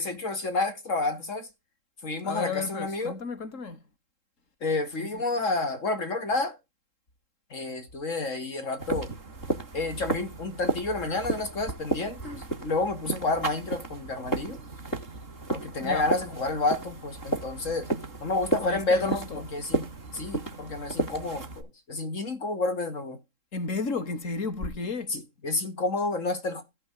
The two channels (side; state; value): right; late; 3.7 ms